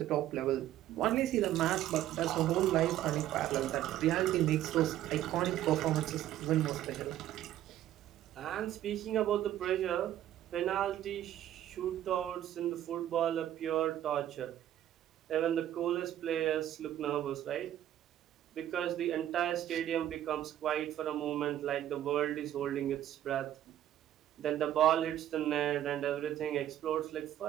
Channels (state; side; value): quieter; left; 12.2 dB